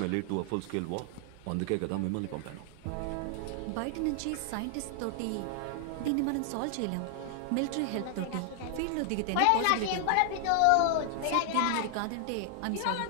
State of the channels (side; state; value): both; different; correlation 0.00